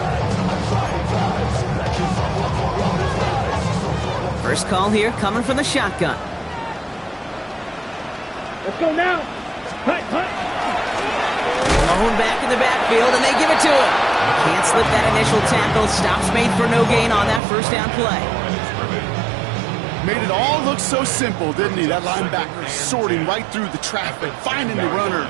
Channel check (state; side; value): drops out; left; at 17.4 s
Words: First call here coming from the shotgun. Let's go now. Cut. Lone back in the backfield, and they give it to him. Can't slip that initial tackle. Stops made for no gain on that first down play. Made it all look so simple, didn't he? That linebacker sorting right through the traffic, finding the runner.